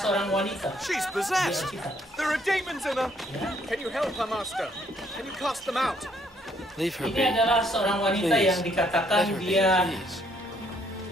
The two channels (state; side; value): normal; both; correlation 0.68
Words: wanita. She's possessed. There are demons in her. Can you help her, Master? Can you cast them out? Leave her be. Ini adalah seorang wanita Please. yang dikatakan Let her be, dia please.